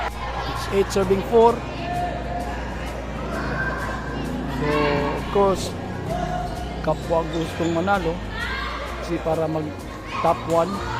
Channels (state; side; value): identical; both; correlation 1.00